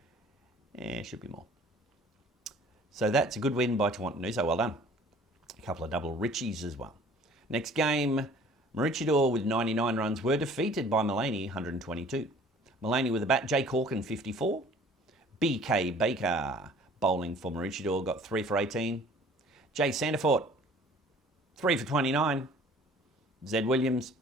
Should be more. So that's a good win by Tawantinoosa, well done. A couple of double Richies as well. Next game, Maroochydore with 99 runs were defeated by Mullaney, 122. Mullaney with the bat, Jay Corkin, 54. BK Baker, bowling for Maroochydore, got 3 for 18. Jay Sandifort, 3 for 29. Zed Williams,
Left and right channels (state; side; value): normal; both; correlation 0.51